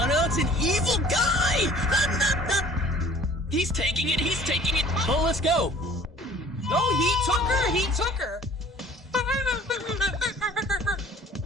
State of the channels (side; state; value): both; normal; correlation 0.50